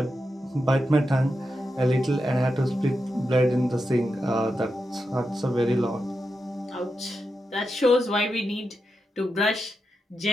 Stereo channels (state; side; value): normal; both; correlation 0.88